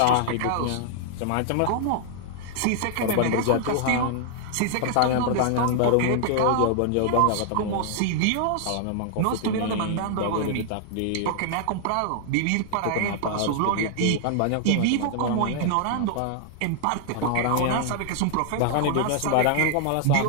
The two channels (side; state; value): both; different; correlation 0.00